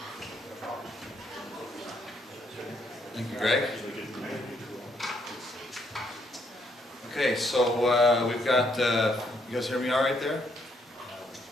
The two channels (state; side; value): normal; both; correlation 0.72